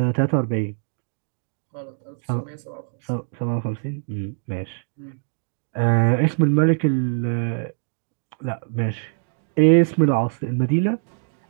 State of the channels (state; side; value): silent; left; digital silence